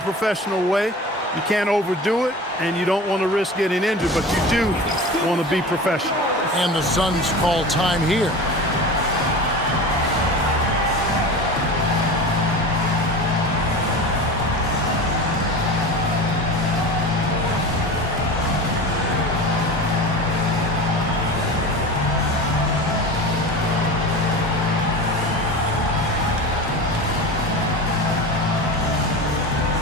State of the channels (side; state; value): both; normal; correlation 0.32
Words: way. You can't overdo it, and you don't want to risk getting injured, but you do want to be professional. And the Suns call time here.